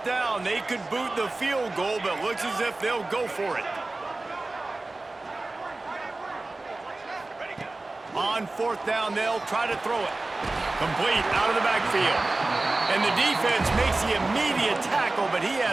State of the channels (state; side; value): quieter; left; 3.1 dB